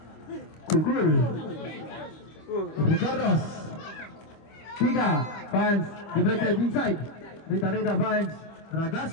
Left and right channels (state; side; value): late; right; 25 ms